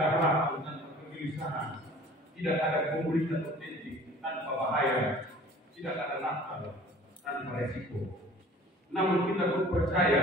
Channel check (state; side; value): normal; both; correlation 0.47